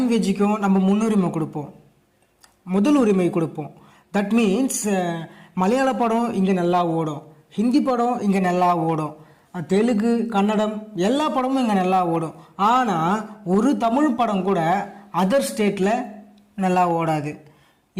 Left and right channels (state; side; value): identical; both; correlation 1.00